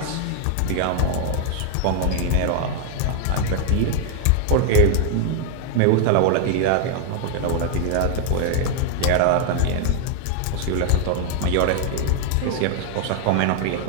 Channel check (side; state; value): both; different; correlation 0.00